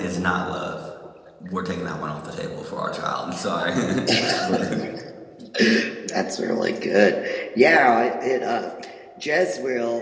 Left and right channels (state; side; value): identical; both; correlation 1.00